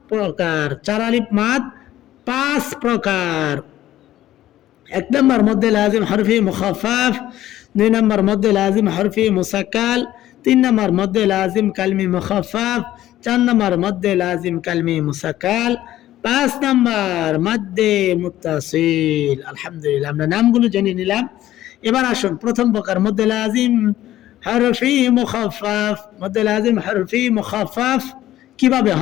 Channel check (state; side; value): quieter; right; 13.8 dB